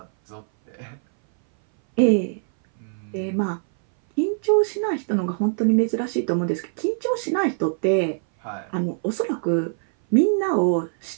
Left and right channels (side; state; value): left; silent; 59 dB below the other